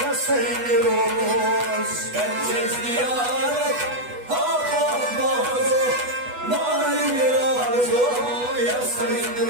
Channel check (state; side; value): late; left; 8.2 ms